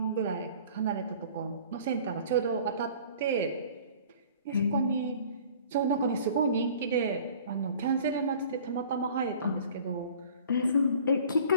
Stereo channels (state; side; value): inverted; both; correlation -0.48